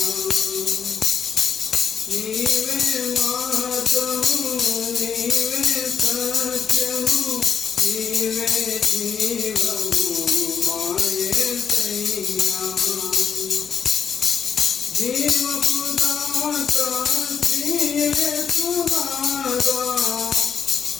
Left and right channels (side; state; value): right; quieter; 7.0 dB